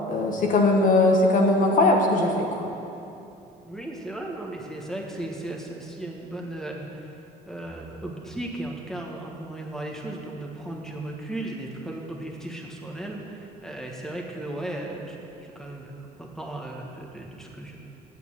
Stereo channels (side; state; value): both; normal; correlation 0.43